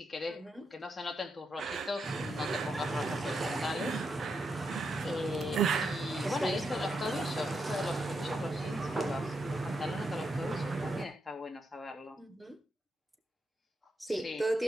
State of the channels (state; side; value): normal; both; correlation 0.82